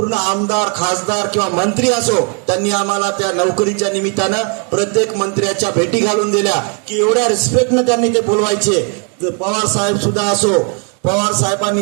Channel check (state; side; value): quieter; left; 36.3 dB